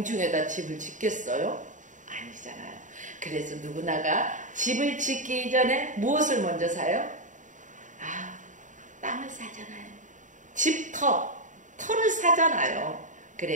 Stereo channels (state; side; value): late; left; 0.36 ms